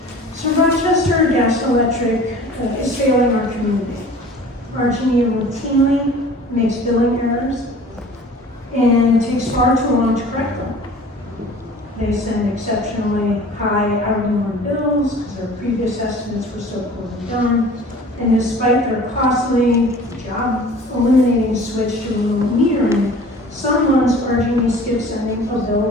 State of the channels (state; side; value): normal; both; correlation 0.45